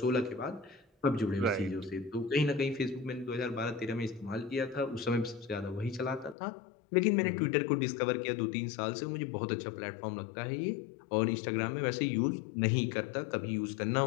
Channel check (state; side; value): drops out; right; at 6.4 s